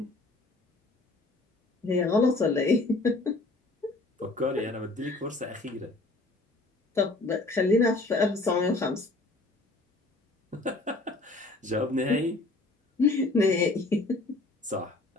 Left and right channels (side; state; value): right; quieter; 3.0 dB